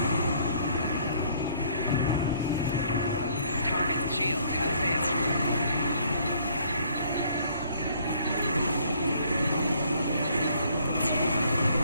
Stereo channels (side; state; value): both; inverted; correlation -0.62